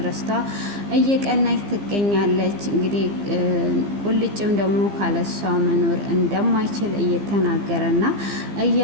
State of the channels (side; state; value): left; late; 15 ms